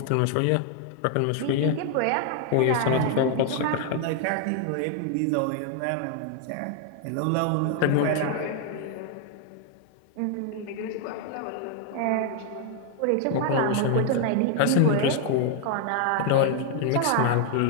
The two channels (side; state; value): both; different; correlation 0.00